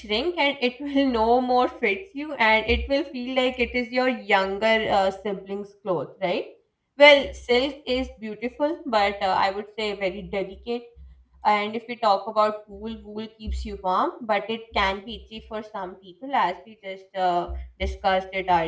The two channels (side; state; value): both; identical; correlation 1.00